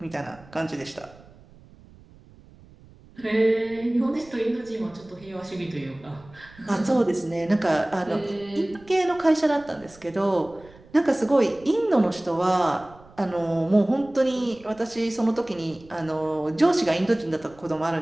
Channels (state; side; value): noise; right; rumble, 24 dB below the sound